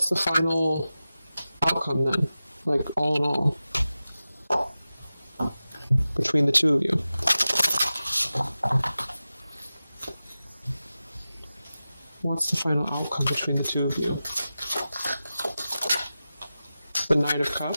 the final outcome then? Like, all in all, between the two of you? What's the final outcome between the two of you? The Knight of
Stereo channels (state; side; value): inverted; both; correlation -0.94